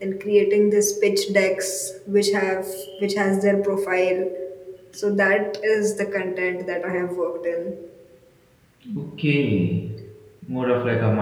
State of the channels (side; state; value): both; identical; correlation 1.00